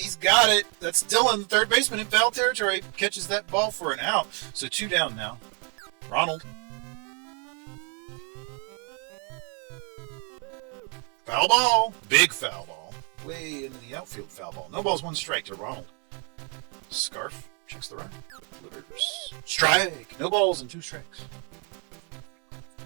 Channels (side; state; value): left; quieter; 36.5 dB